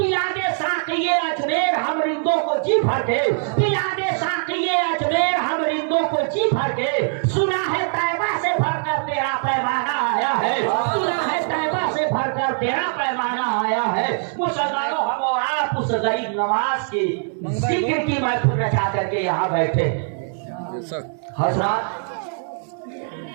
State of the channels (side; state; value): left; silent; digital silence